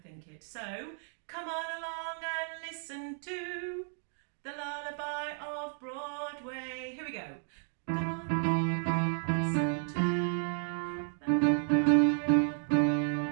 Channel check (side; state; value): left; silent; 56 dB below the other